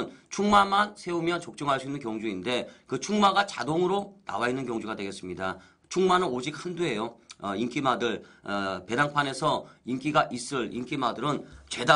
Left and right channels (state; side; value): identical; both; correlation 1.00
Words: 충마만 세우면 적중할 수 있는 경주인데, 그 충마가 자동으로 나와 있는 경주가 되겠습니다. 충마는 오직 한두예요. 인기마들 배당판에서 인기가 있을 인기마들은